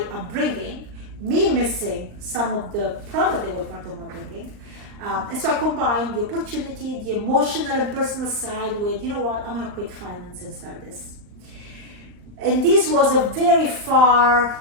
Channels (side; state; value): left; late; 39 ms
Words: upbringing, me missing some of the product they were part of my upbringing. And so I combined the opportunity, the emotional and personal side with, you know what, I'm gonna quit finance and start this. And this was a very